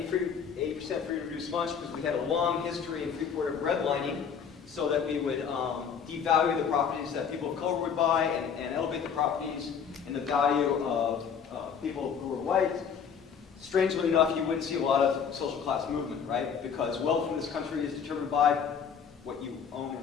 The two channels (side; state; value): right; quieter; 7.0 dB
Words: free and reduced lunch, because we had a long history in Freeport of redlining, so that we would devalue the properties that people of color would buy and elevate the properties and the value of people who were white. Strangely enough, you wouldn't see a lot of social class movement, right? Because wealth in this country is determined by what you own